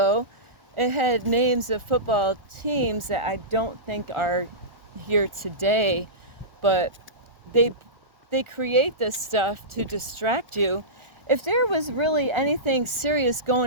it had names of football teams that I don't think are here today, but they create this stuff to distract you. If there was really anything serious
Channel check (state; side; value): late; left; 1.4 ms